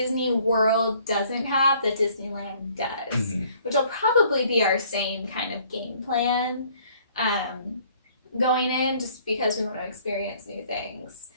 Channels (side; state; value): both; inverted; correlation -0.59